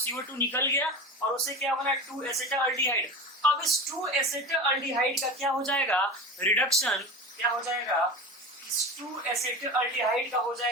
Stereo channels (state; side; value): normal; both; correlation 0.29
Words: निकल गया और उससे क्या बना, 2 एसिटल्डिहाइड। अब इस 2 एसिटल्डिहाइड का क्या हो जाएगा, रिडक्शन। क्या हो जाएगा, इस 2 एसिटल्डिहाइड का हो